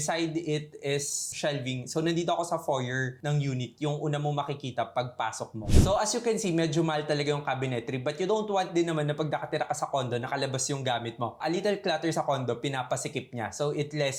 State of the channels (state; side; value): identical; both; correlation 1.00